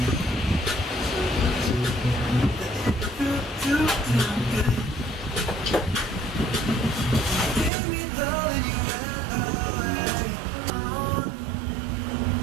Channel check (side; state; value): left; drops out; at 7.7 s